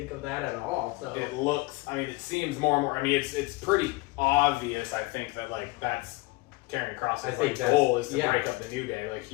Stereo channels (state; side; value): quieter; right; 22.7 dB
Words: of that at all. So it looks. It seems more and more. It's pretty obvious. I think that that's Karrion Kross's I think goal is to yeah. break up the New Day. Like,